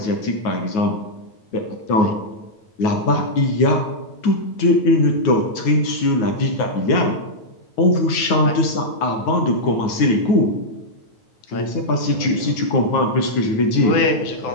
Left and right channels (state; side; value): late; right; 9.4 ms